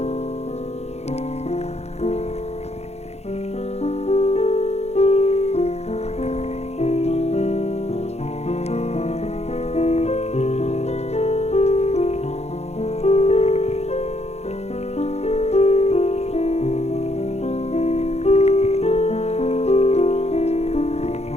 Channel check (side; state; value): right; late; 0.31 ms